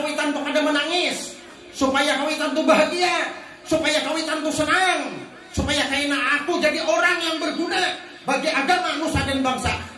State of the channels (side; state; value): both; identical; correlation 1.00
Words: tuh kada menangis. Supaya kawitan tuh bahagia, supaya kawitan tuh senang, supaya kaina aku jadi orang yang berguna bagi agama nusa dan bangsa.